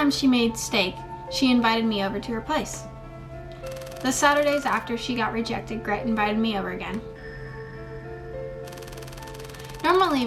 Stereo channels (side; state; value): both; identical; correlation 1.00